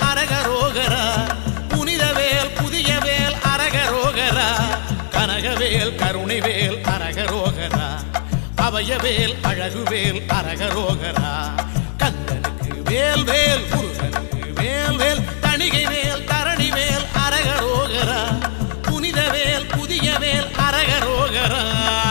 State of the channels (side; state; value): right; silent; digital silence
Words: அரகரோகரா புனித வேல் புதிய வேல் அரகரோகரா கனகவேல் கருணை வேல் அரகரோகரா அபயவேல் அழகுவேல் அரகரோகரா கந்தனுக்கு வேல் வேல் முருகனுக்கு வேல் வேல் தணிகை வேல் தரணி வேல் அரகரோகரா புனித வேல் புதிய வேல் அரகரோகரா